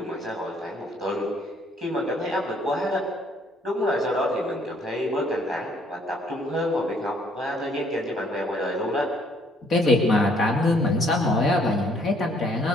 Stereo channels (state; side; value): normal; both; correlation 0.64